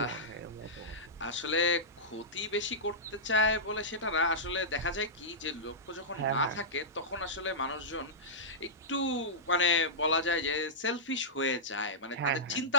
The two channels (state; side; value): normal; both; correlation -0.14